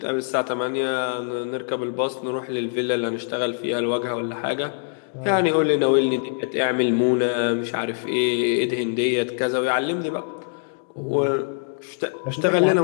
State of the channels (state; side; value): silent; right; 63 dB below the other